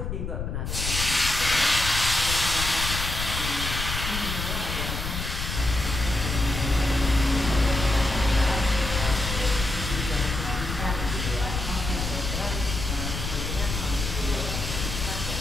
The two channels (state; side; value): noise; left; rumble, 4 dB below the sound